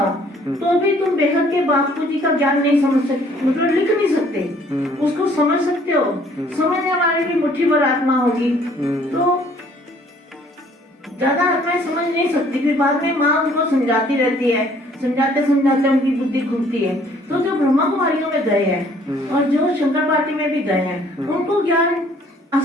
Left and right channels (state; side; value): normal; both; correlation 0.59